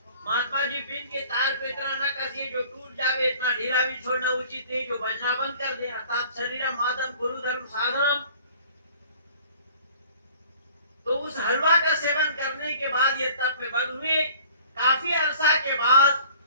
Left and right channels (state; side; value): inverted; both; correlation -0.50